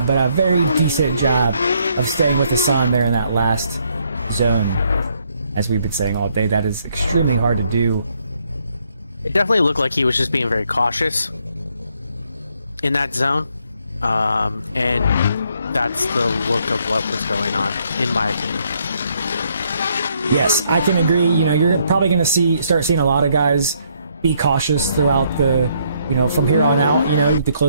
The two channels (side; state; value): both; inverted; correlation -0.71